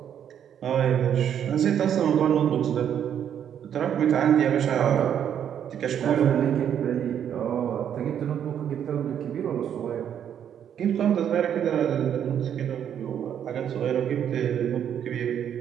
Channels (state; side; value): quieter; left; 9.2 dB